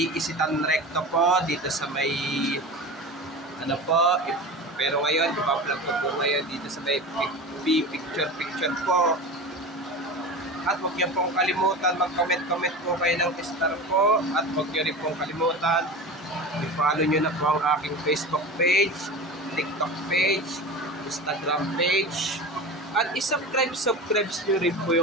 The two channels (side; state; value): both; normal; correlation 0.30